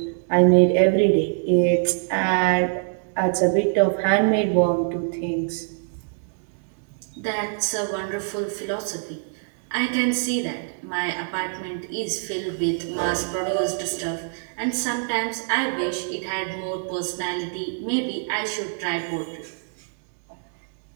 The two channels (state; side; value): silent; left; 62 dB below the other